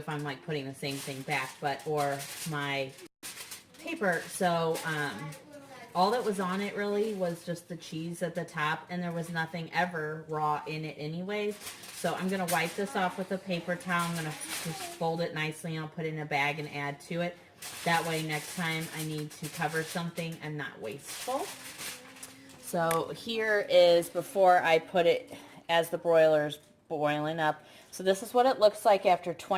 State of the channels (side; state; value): both; identical; correlation 1.00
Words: I'm like putting the same thing back, or my paper. So all that was on it really was just the cheese at the top, and there was nothing ever raw in it anyways. So I'm going to wipe this off with a paper towel. I'm going to just fold it nicely, and I'll put it in a bag and add to it. That way next time I need to cover something, I'm not wasteful. So here is before I put it as the broiler's boiling up. So this is what it looks like after